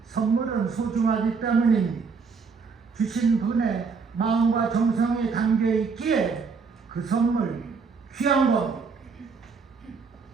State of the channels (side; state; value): left; quieter; 5.2 dB